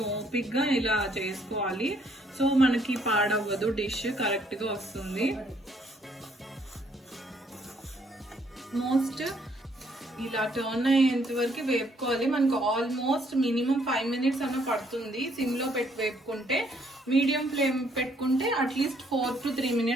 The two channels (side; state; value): both; normal; correlation 0.67